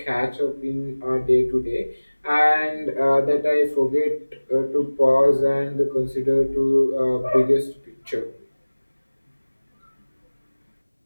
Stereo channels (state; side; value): inverted; both; correlation -1.00